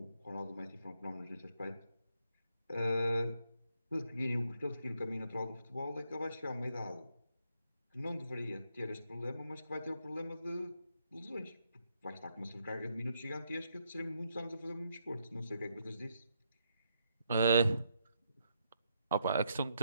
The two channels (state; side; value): inverted; both; correlation -0.78